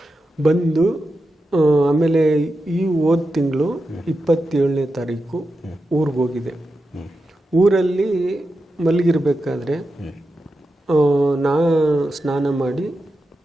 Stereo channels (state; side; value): normal; both; correlation 0.89